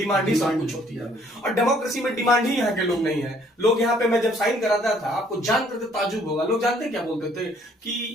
ही सब कुछ होती है, और डेमोक्रेसी में डिमांड ही यहाँ के लोग नहीं है। लोग यहाँ पे, मैं जब साइन कराता था, आपको जान करके ताजुब होगा, लोग जानते क्या बोलते थे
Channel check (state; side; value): normal; both; correlation 0.62